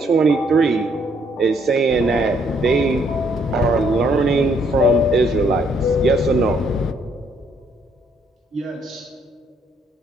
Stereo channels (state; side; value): normal; both; correlation 0.69